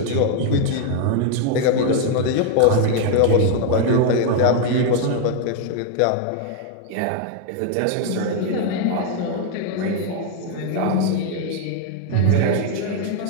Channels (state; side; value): different; both; correlation 0.00